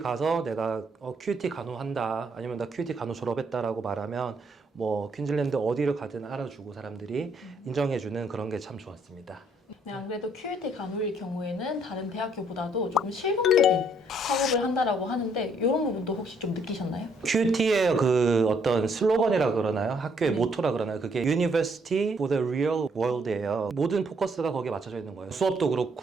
내가 QUT 간호한다 아니면 나 QUT 간호 졸업했다라고 말하면 뭐 퀸즐랜드 어디를 가든 알아주고 사람들이 인정해주는 그런 게 참 좋았습니다. 네, 안 그래도 QUT 간호일 경우에는 다른 대학교보다도 조금 실용적인 학업을 한다라고 하는데 이런 부분도 혹시 좀 느끼셨나요? QUT의 그 어떤 슬로건이라 그러나요? 학교의 모토라 그러나요? 그게 University for the Real World예요. 모든 포커스가 거기에 맞춰져 있는 거예요. 수업도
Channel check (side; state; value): both; normal; correlation 0.68